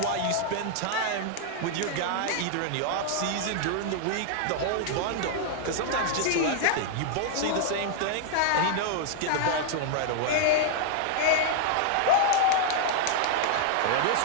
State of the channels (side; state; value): both; different; correlation -0.01